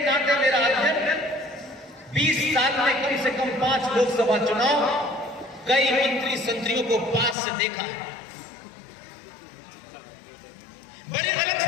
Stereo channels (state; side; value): drops out; right; at 7.4 s